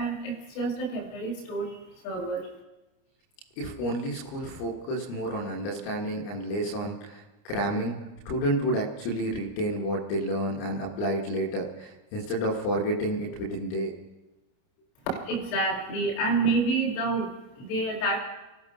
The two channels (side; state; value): right; late; 30 ms